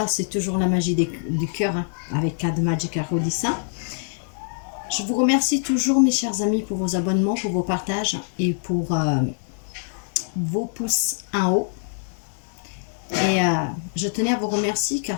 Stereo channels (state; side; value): silent; right; 63 dB below the other